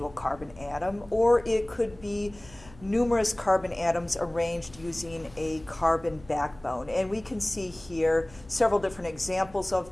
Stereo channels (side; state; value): left; noise; hum, 22 dB below the sound